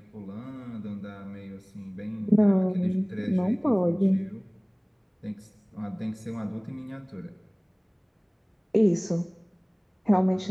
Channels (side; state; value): both; identical; correlation 1.00